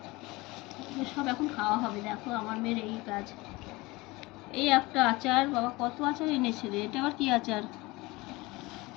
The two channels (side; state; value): right; quieter; 22.2 dB